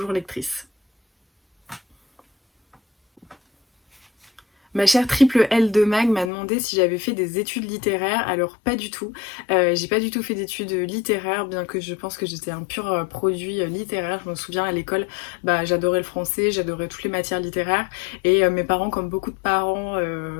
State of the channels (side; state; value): right; drops out; at 6.3 s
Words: lectrice. Ma chère triple L de Mag m'a demandé si j'avais fait des études littéraires. Alors pas du tout. J'ai pas du tout fait d'études littéraires, bien que je pense que j'étais un pur produit littéraire. Je me souviens à l'école, bah, j'adorais le français, j'adorais toutes les matières littéraires. Et mes parents, comme beaucoup de parents